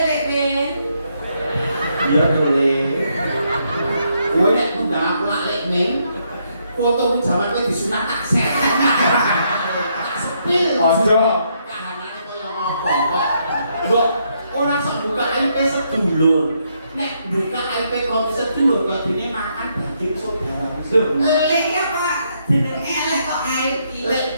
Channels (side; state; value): both; inverted; correlation -0.75